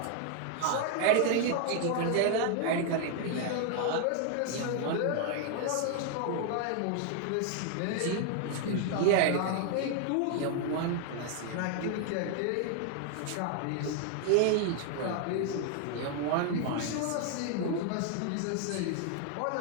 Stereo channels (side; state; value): both; different; correlation 0.00